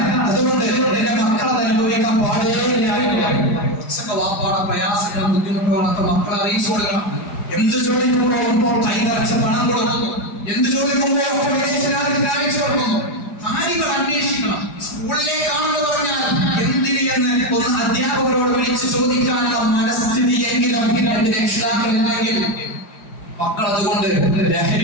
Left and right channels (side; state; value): right; late; 5.0 ms